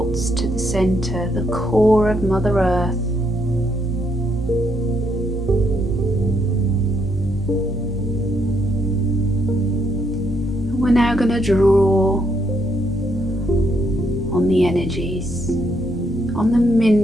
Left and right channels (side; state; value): both; normal; correlation 0.74